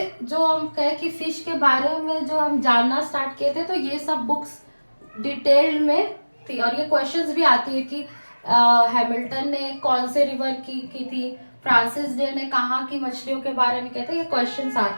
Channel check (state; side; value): inverted; both; correlation -1.00